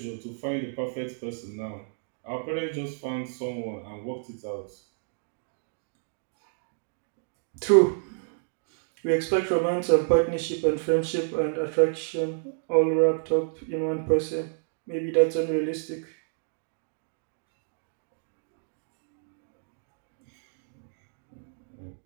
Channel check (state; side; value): silent; left; digital silence